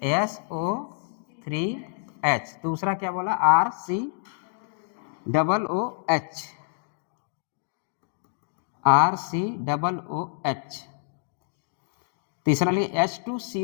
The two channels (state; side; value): silent; right; digital silence